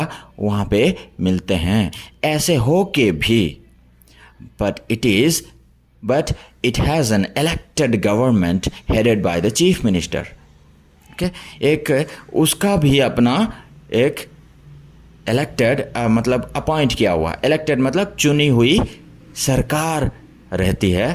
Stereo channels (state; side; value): identical; both; correlation 1.00